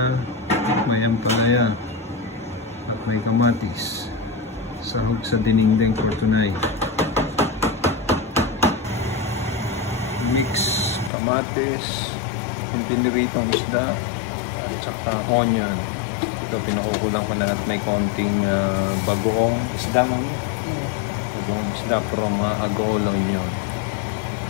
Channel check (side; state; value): right; drops out; at 11.1 s